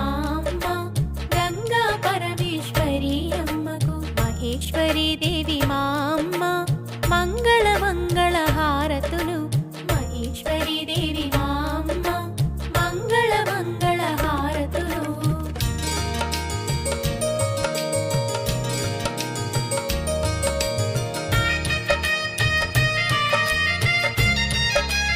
అమ్మ గంగా పరమేశ్వరి అమ్మకు మహేశ్వరి దేవి మా అమ్మ మంగళ మంగళ హారతులు మహేశ్వరి దేవి మా అమ్మ మంగళ మంగళ హారతులు.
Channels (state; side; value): identical; both; correlation 1.00